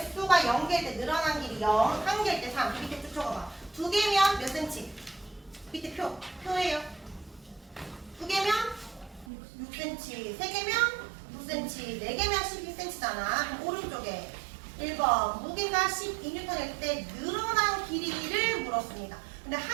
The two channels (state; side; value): drops out; left; at 9.2 s